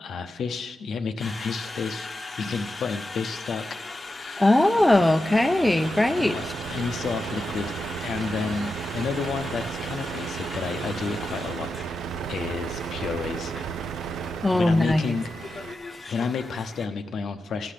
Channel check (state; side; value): normal; both; correlation 0.88